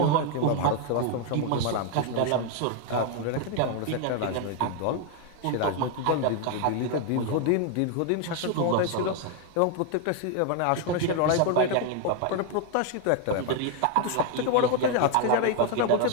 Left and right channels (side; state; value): both; different; correlation 0.01